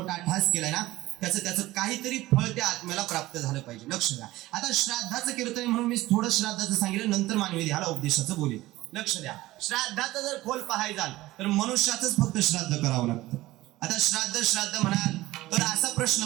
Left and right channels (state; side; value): quieter; left; 17.6 dB